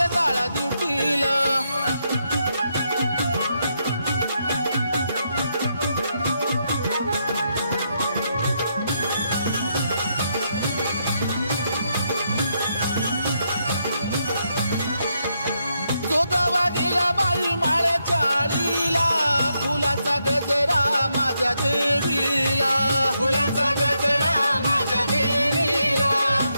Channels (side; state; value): both; inverted; correlation -0.80